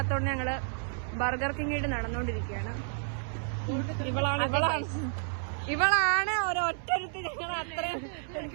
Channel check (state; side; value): silent; left; 57 dB below the other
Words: ഞങ്ങള് ബർഗർ കിങ്ങിട്ട് നടന്നുകൊണ്ടിരിക്കുകയാണ്. ഇവളാണ് ഒരൊറ്റരുത്തി ഞങ്ങൾ അത്രയും